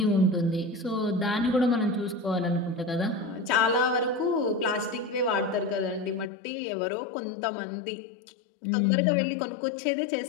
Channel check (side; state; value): right; drops out; at 6.2 s